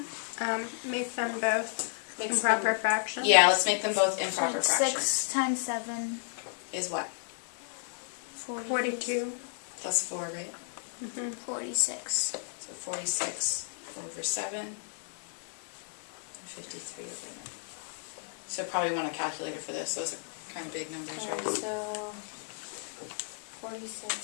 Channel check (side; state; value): right; silent; 56 dB below the other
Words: Make them both Mixed Improper fraction. Yeah, let's make them both improper So fractions. 6 times 7, Is what? 42. Plus 4, right? 46. So 46 over 7. And 53 over 9. So probably want a calculator for this. Those are kind of big numbers, right? So